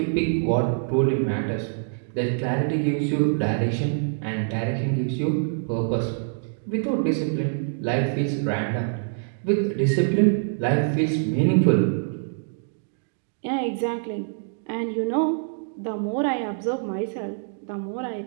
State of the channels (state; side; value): silent; left; digital silence